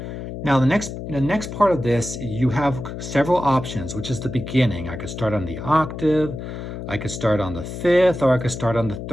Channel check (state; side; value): noise; left; hum, 8 dB below the sound